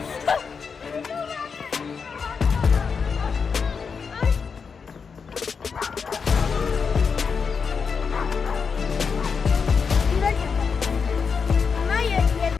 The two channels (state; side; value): quieter; right; 5.7 dB